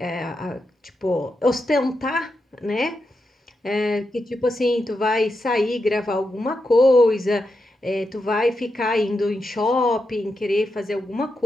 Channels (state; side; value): normal; both; correlation 0.86